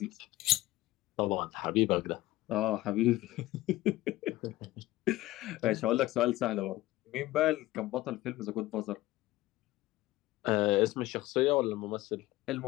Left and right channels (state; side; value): quieter; right; 17.3 dB